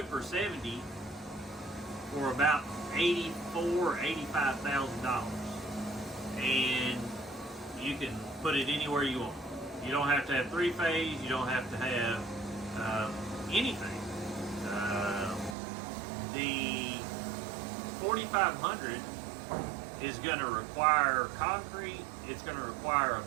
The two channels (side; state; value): left; drops out; at 15.6 s